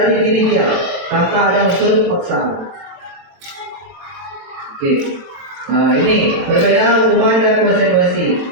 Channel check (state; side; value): late; left; 23 ms